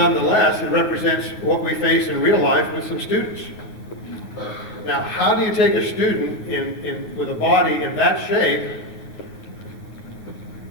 it represents what we face in real life with some students. Now, how do you take a student with a body in that shape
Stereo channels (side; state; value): right; late; 9.4 ms